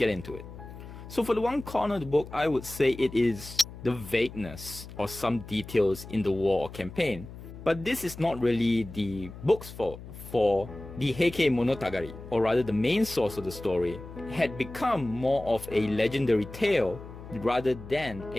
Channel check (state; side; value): noise; left; hum, 14 dB below the sound